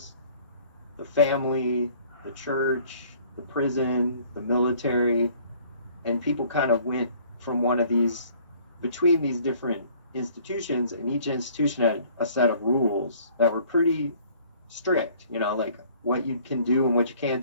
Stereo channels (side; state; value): both; inverted; correlation -0.56